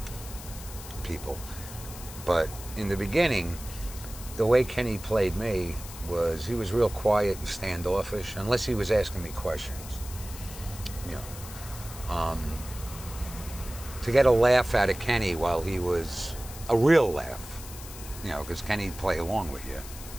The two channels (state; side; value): noise; left; hiss, 14 dB below the sound